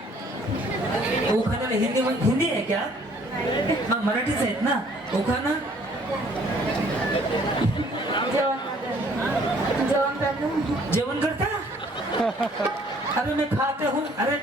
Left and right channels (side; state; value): both; normal; correlation 0.59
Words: उखाणाला हिंदी आहे क्या? मग मराठीच आहेत ना उखाणा? जेवण करता? अरे मैं खाते हूँ. अरे